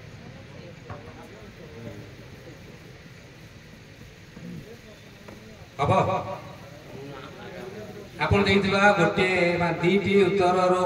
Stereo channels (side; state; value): both; identical; correlation 1.00